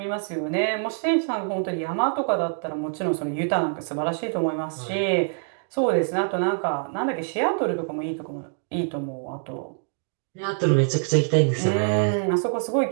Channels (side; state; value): left; silent; digital silence